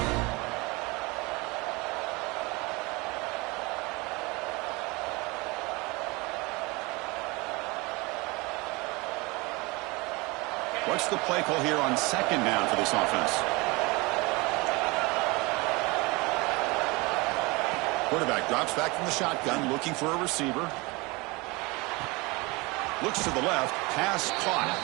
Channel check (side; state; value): left; quieter; 25.1 dB